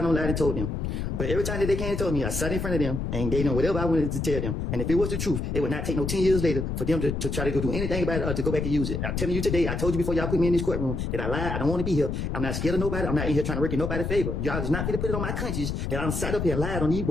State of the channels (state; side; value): noise; left; rumble, 2 dB below the sound